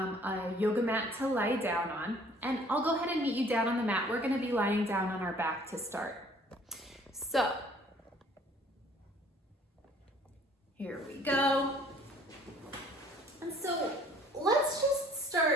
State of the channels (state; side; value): normal; both; correlation 0.56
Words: yoga mat to lie down on. And I'll go ahead and meet you down on the mat. We're going to be lying down on our back to start. So here we go. And so let's just